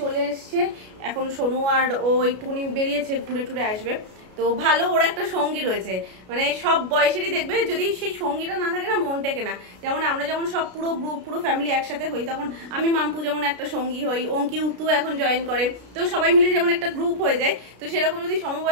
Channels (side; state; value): left; late; 33 ms